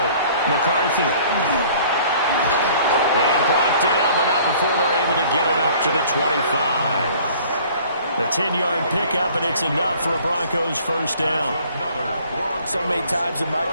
McCarthy. And blocked down, but not before they're able to get it up to the 25. A 10-yard pickup, and it's enough for a Broncos first down. So many times in my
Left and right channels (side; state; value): both; inverted; correlation -0.53